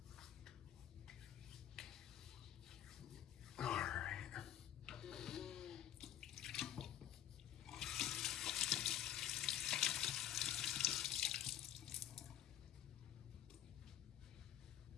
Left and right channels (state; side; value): quieter; right; 11.7 dB